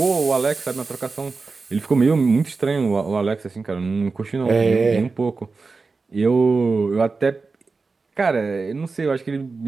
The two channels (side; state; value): left; quieter; 4.2 dB